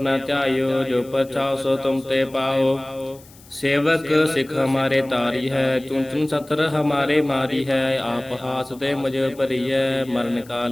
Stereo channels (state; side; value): noise; left; hiss, 24 dB below the sound